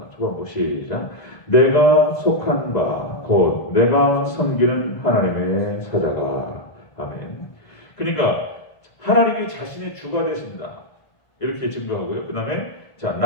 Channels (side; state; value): right; late; 1.5 ms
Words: 초반부 시작. 내가 속한 바, 곧 내가 섬기는 하나님의 사자가. 아멘. 그러니까, 하나님이 자신의 주가 되신다. 이렇게 증거하고요. 그 다음에, 자,